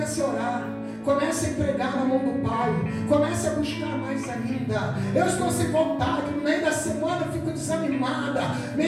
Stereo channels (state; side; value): identical; both; correlation 1.00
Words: a orar. Comece a entregar na mão do Pai. Comece a buscar mais ainda. Eu estou sem vontade. No meio da semana eu fico desanimada.